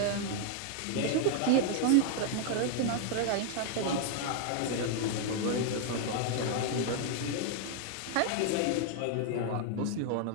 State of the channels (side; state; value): both; different; correlation 0.00